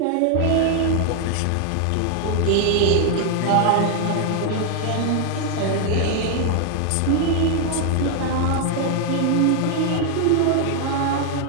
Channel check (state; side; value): different; both; correlation 0.00